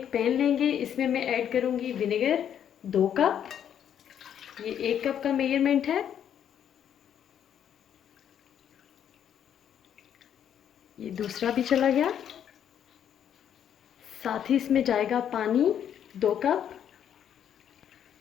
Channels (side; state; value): right; quieter; 9.3 dB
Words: पैन लेंगे, इसमें मैं ऐड करूँगी विनेगर 2 कप। ये 1 कप का मेजरमेंट है। ये दूसरा भी चला गया। साथ ही इसमें जाएगा पानी 2 कप।